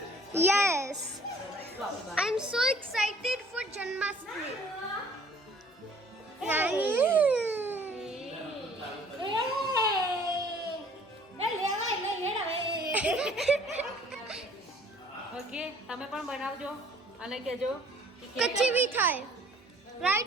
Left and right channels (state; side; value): normal; both; correlation 0.55